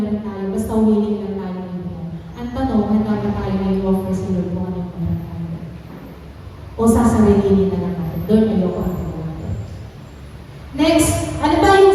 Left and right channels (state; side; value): identical; both; correlation 1.00